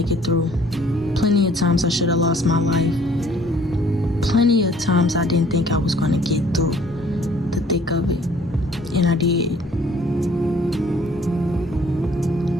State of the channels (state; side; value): normal; both; correlation 0.57